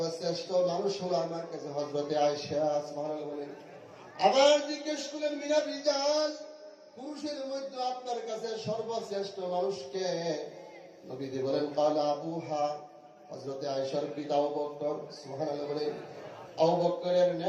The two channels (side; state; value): both; identical; correlation 1.00